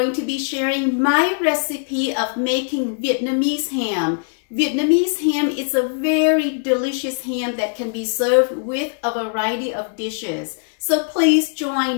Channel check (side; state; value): right; silent; 61 dB below the other